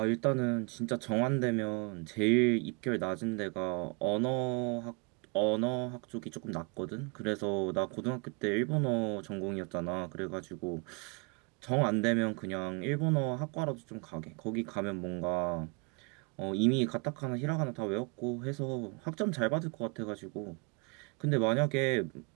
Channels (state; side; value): quieter; left; 32.7 dB